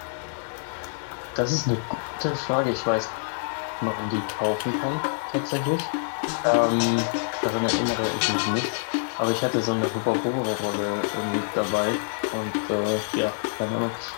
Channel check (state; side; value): silent; right; digital silence